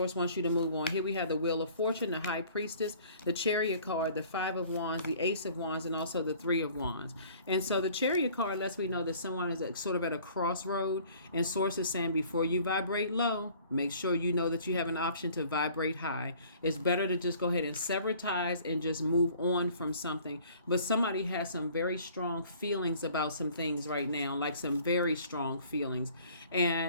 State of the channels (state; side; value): inverted; both; correlation -0.52